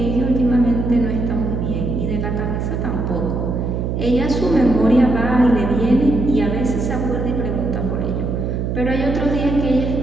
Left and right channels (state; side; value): noise; right; hum, 2 dB below the sound